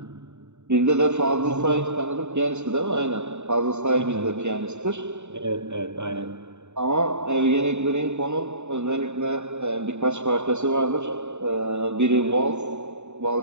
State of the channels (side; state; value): left; late; 0.82 ms